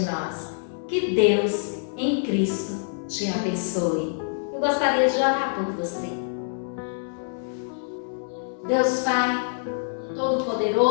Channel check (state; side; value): silent; right; 61 dB below the other